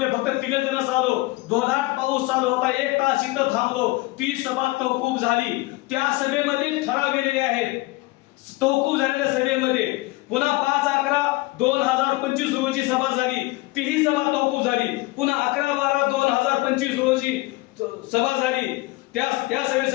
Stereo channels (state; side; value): quieter; right; 21.2 dB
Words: फक्त 3 जणच आलो. जोरदार पाऊस चालू होता. 1 तास इथं थांबलो. ती सभा तहकूब झाली. त्या सभेमध्ये ठराव गेलेले आहेत. तहकूब झालेल्या सभेमध्ये पुन्हा 5/11/2025 रोजी सभा झाली. तीही सभा तहकूब झाली. पुन्हा 11/12/2025 रोजी सभा झाली. त्या